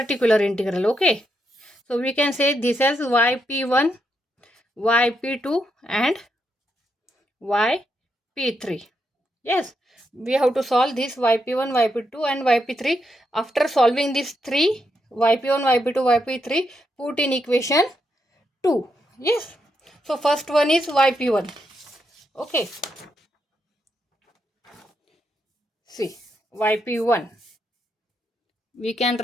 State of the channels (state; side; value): normal; both; correlation 0.81